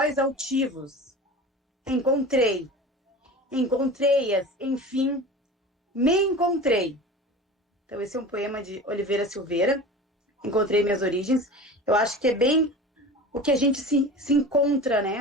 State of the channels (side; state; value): both; normal; correlation 0.35